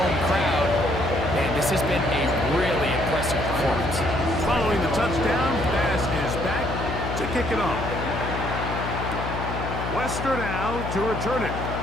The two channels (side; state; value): left; noise; hum, 5 dB below the sound